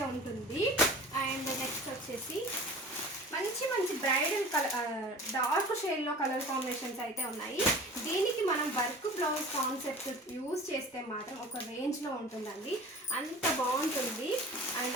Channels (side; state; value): both; normal; correlation 0.41